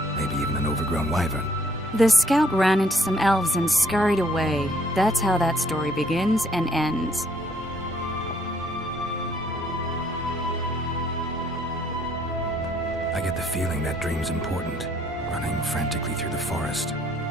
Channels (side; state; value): both; normal; correlation 0.65